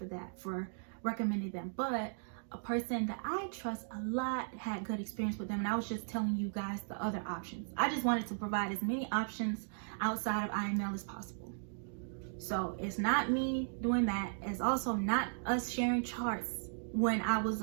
that, for recommending them. But a person that I trust a lot had good experience with them, and I was just telling you guys the other options. I just wanted to provide as many options outside of IML as possible. So it's not me doing that. It's also not us sharing charts. When I was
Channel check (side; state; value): left; silent; digital silence